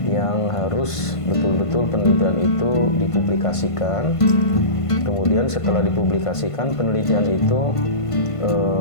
yang harus betul-betul penelitian itu dipublikasikan. Kemudian setelah dipublikasikan penelitian itu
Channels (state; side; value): late; right; 1.5 ms